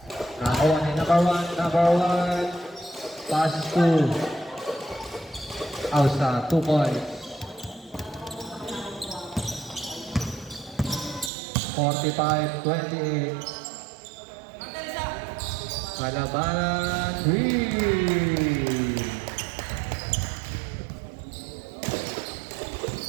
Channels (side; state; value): left; drops out; at 11.3 s